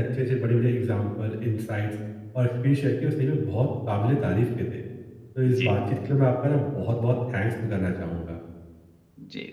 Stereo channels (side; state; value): both; identical; correlation 1.00